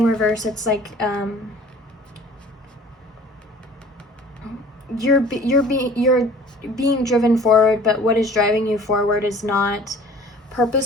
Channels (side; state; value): both; normal; correlation 0.49